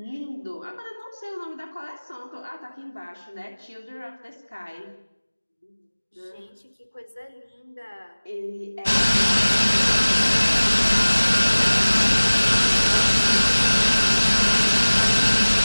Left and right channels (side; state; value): both; inverted; correlation -1.00